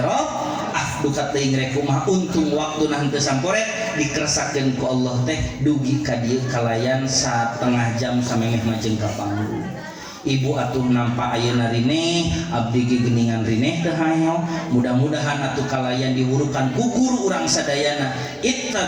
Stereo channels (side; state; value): both; identical; correlation 1.00